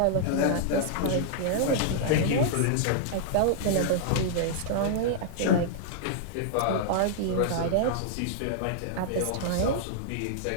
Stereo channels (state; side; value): different; both; correlation -0.01